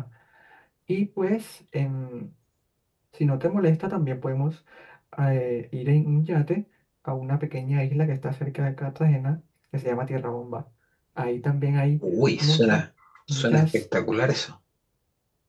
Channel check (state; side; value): identical; both; correlation 1.00